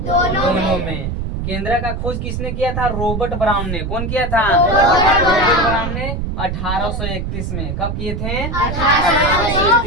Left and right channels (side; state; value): right; noise; rumble, 3 dB below the sound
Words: में। केंद्र का खोज किसने किया था? रॉबर्ट ब्राउन ने। कौन किया था? रॉबर्ट ब्राउन ने 1831 में। कब किए थे?